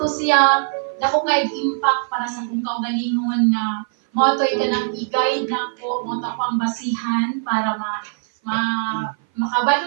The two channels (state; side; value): silent; left; 57 dB below the other